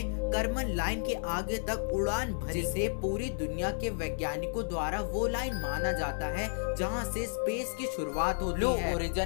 कर्मन लाइन के आगे तक उड़ान भरी जिसे पूरी दुनिया के वैज्ञानिकों द्वारा वो लाइन माना जाता है जहां से स्पेस की शुरुआत होती है। ब्लू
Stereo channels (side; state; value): right; silent; digital silence